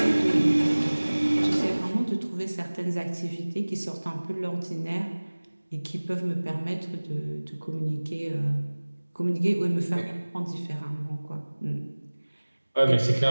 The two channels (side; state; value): both; inverted; correlation -1.00